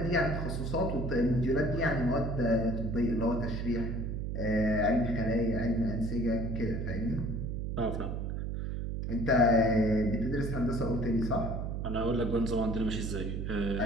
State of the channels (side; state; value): right; noise; hum, 3 dB below the sound